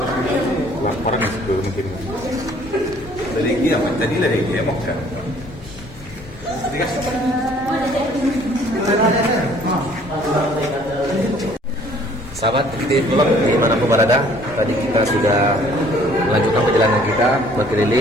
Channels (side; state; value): both; normal; correlation 0.57